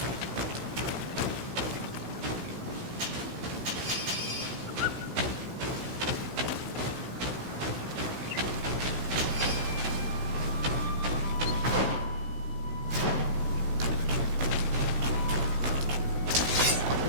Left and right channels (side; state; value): left; late; 16 ms